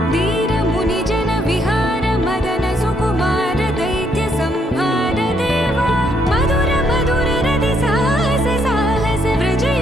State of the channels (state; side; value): normal; both; correlation 0.73